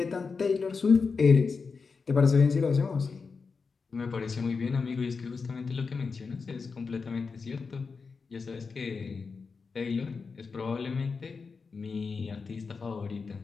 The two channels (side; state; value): right; quieter; 4.9 dB